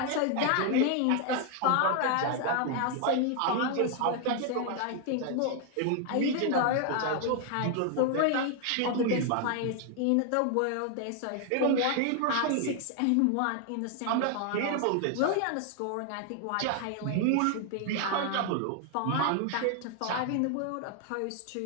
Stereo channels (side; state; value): both; different; correlation 0.00